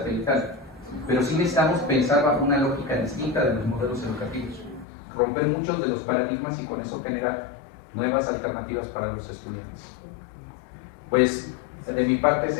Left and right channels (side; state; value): right; drops out; at 4.9 s